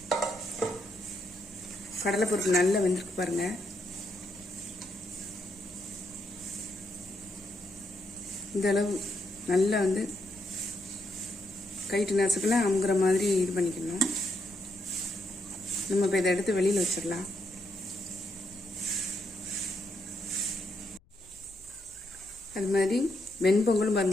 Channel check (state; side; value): noise; left; rumble, 29 dB below the sound